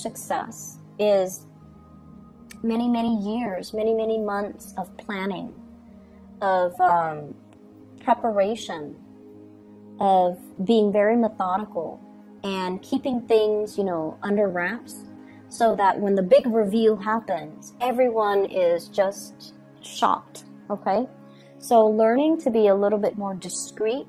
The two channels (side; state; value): both; identical; correlation 1.00